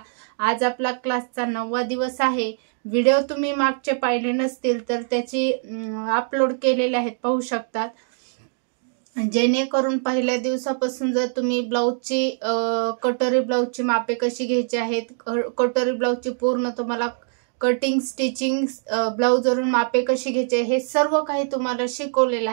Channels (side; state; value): left; silent; 63 dB below the other